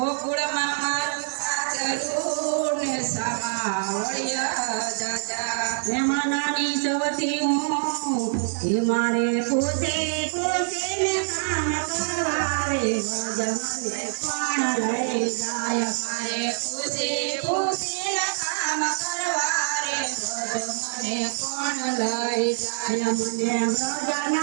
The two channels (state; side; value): silent; left; 60 dB below the other